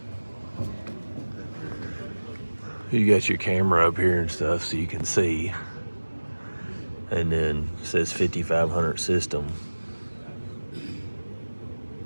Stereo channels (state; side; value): inverted; both; correlation -1.00